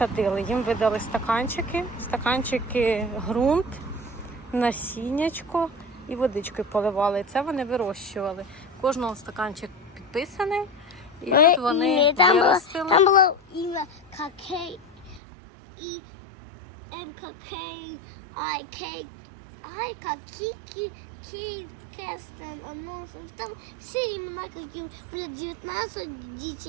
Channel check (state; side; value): drops out; left; at 15.2 s